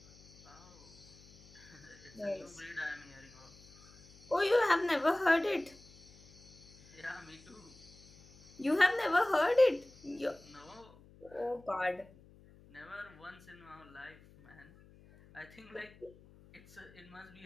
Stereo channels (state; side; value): noise; left; hum, 23 dB below the sound